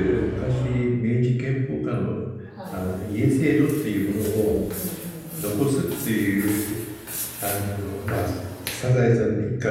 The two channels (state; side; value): identical; both; correlation 1.00